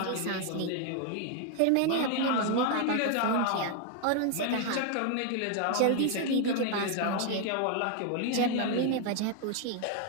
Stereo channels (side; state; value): both; different; correlation 0.01